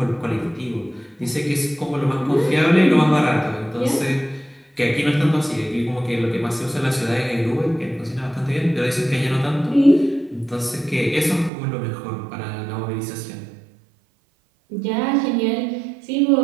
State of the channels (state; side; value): drops out; left; at 11.5 s